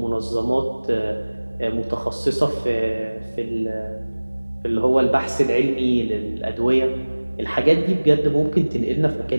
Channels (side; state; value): both; inverted; correlation -1.00